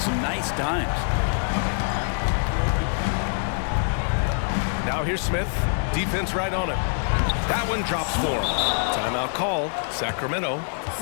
nice dimes. Now here's Smith, defense right on it. That one drops for him. Timeout call, Sacramento.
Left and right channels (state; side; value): silent; right; digital silence